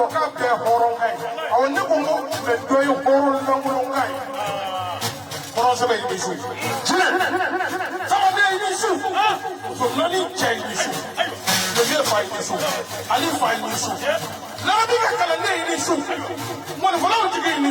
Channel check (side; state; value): both; identical; correlation 1.00